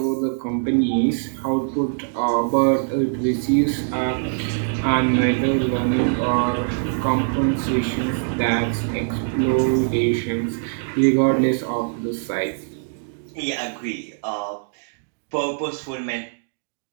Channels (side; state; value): left; silent; digital silence